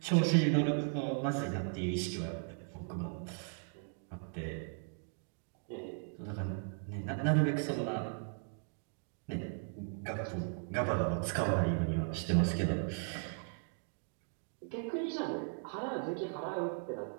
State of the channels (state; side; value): silent; left; 53 dB below the other